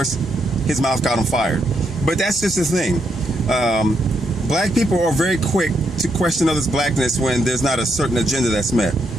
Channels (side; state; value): both; normal; correlation 0.79